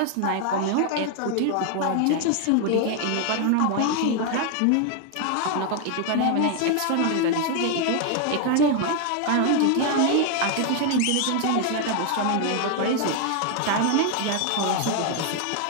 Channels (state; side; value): different; both; correlation 0.00